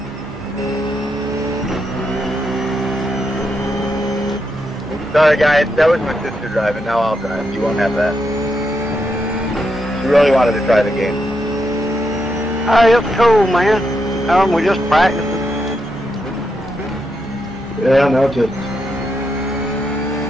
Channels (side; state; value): both; normal; correlation 0.82